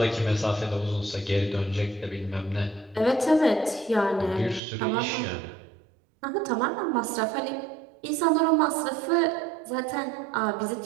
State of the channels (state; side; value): drops out; left; at 4.6 s